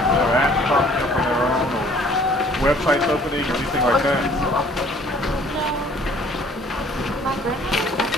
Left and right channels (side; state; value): both; normal; correlation 0.56